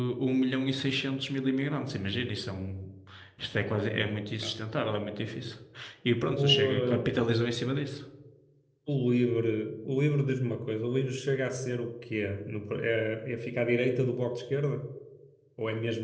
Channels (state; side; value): identical; both; correlation 1.00